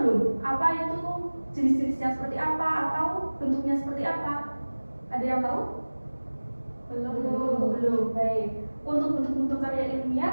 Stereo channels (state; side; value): inverted; both; correlation -1.00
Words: apa itu jenis-jenisnya seperti apa atau bentuknya seperti apa? Ada yang tahu? Belum. Baik. Untuk bentuk-bentuk karya